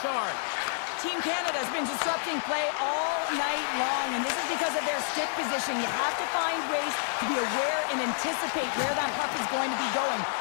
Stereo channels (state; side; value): silent; right; digital silence